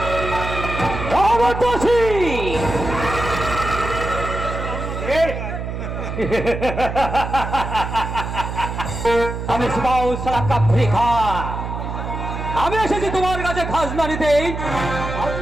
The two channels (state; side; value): noise; right; hum, 5 dB below the sound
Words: আমার চাষি আমি আমি এসেছি তোমার কাছে খাজনা নিতে।